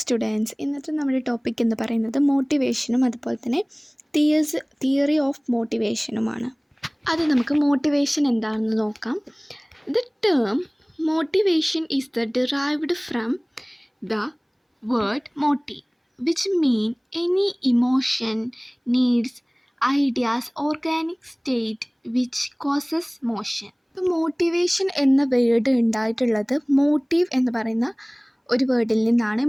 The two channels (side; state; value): both; identical; correlation 1.00